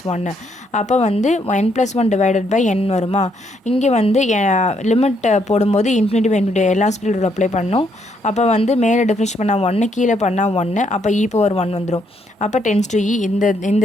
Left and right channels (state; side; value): normal; both; correlation 0.73